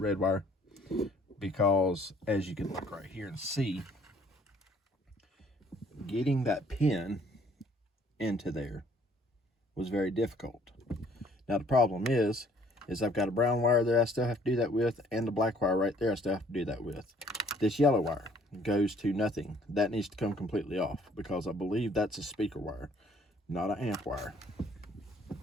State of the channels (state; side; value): normal; both; correlation 0.60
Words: wire, because as you can look right here and see, getting that pin into there was very difficult. Now the problem is I've got a brown wire there I still have to do that with, and the black wire right there I still have to do that with. This yellow wire goes to nothing. That needs to come completely off, because I believe that's a speaker wire, not an amp wire.